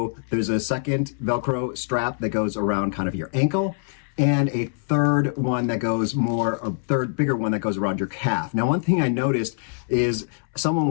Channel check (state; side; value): silent; right; 63 dB below the other